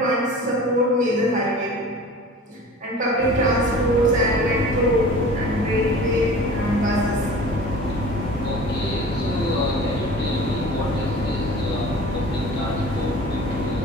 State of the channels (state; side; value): normal; both; correlation 0.42